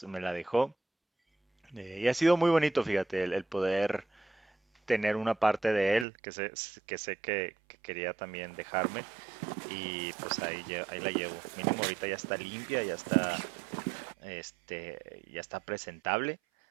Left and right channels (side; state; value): left; drops out; at 6.1 s